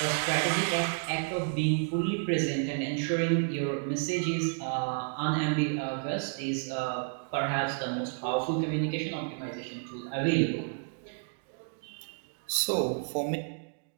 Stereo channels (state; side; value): silent; left; 57 dB below the other